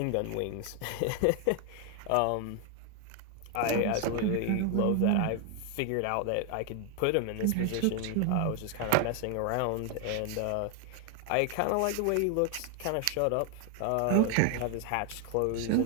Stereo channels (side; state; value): both; different; correlation 0.00